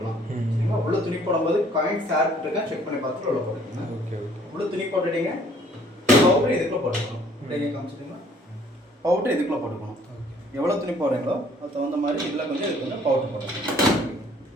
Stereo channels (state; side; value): normal; both; correlation 0.59